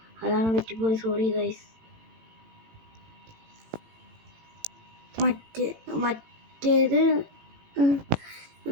അതാണ് പറ്റിപ്പോയി. Sorry guys. മറ്റേത്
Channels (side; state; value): left; late; 18 ms